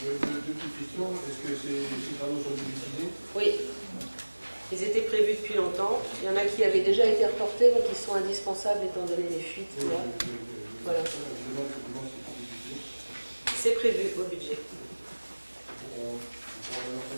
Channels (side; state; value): both; inverted; correlation -1.00